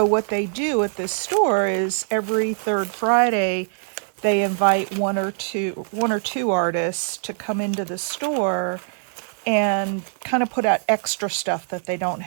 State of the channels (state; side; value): silent; left; digital silence